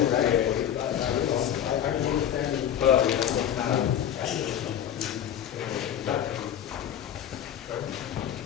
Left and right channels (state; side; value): quieter; right; 10.0 dB